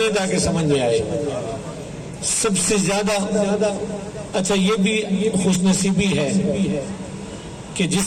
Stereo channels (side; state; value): both; identical; correlation 1.00